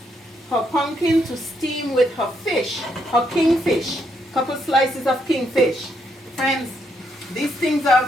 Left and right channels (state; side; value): normal; both; correlation 0.76